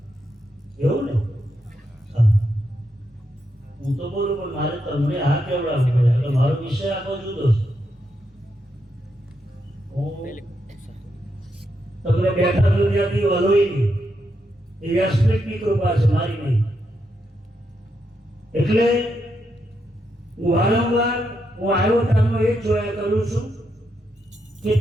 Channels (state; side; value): normal; both; correlation 0.82